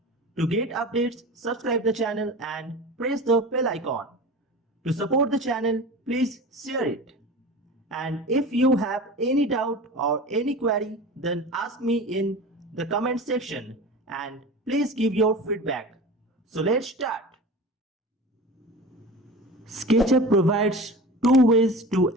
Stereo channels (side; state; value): both; normal; correlation 0.33